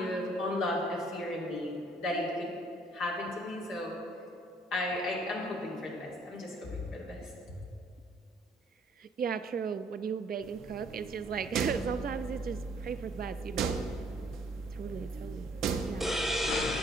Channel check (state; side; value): normal; both; correlation 0.62